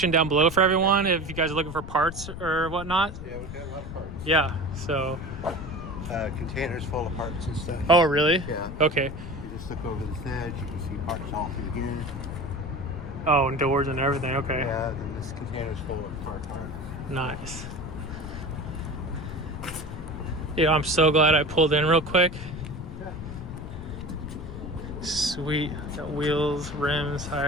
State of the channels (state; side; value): noise; left; rumble, 9 dB below the sound